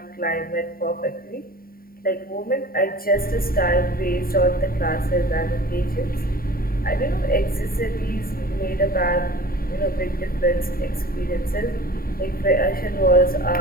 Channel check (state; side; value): late; right; 0.43 ms